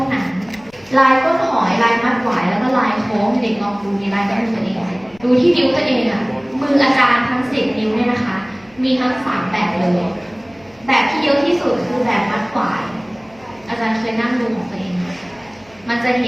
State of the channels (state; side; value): noise; left; hum, 29 dB below the sound